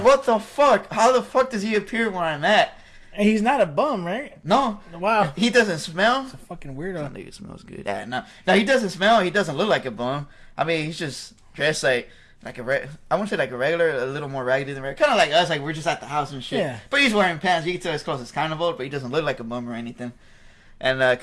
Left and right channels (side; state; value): both; identical; correlation 1.00